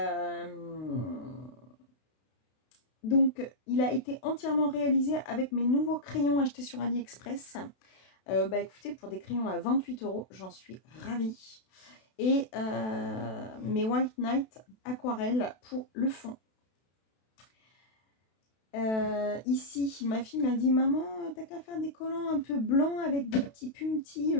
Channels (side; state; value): right; late; 32 ms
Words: Donc, il a été entièrement réalisé avec mes nouveaux crayons achetés sur AliExpress. Écoutez, pour des crayons à 28 €, j'en suis ravie. Et mes White Night aquarelles pour le fond. Ici, ma fille m'a dit « Maman, t'as qu'à faire des collants un peu blancs avec des petits puntis